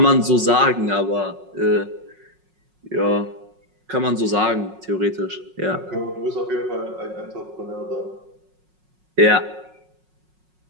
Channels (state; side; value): late; left; 5.5 ms